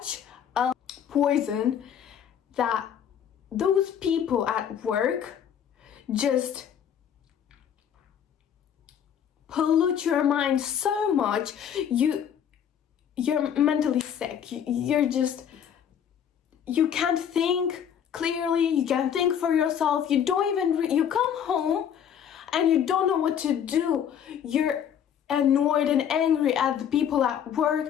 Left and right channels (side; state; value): right; quieter; 8.8 dB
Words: a poison that those people at work just pollute your mind so much, you're mentally sick. You can't think clearly, you can't think for yourself, you come home and you don't know what to do. You're annoyed and angry at the people at